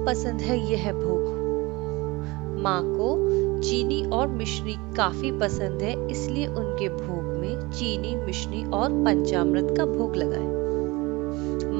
पसंद है यह भोग। माँ को चीनी और मिश्री काफी पसंद है, इसलिए उनके भोग में चीनी, मिश्री और पंचामृत का भोग लगाएं।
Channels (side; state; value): left; quieter; 23.4 dB